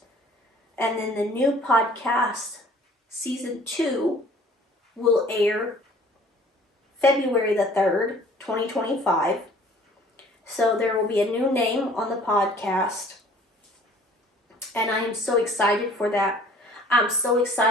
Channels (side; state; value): both; normal; correlation 0.52